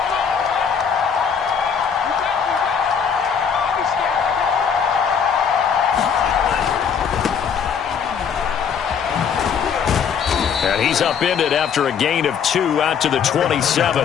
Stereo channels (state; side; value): quieter; right; 7.0 dB